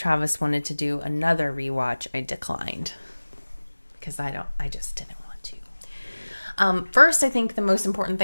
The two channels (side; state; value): both; inverted; correlation -1.00